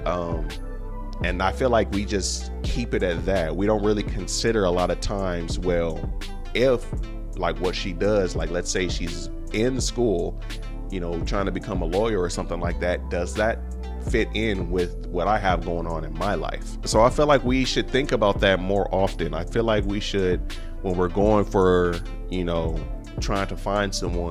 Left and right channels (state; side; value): identical; both; correlation 1.00